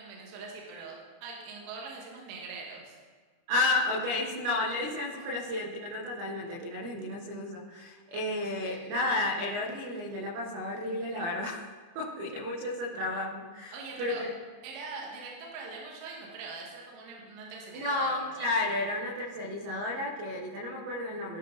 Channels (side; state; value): left; late; 30 ms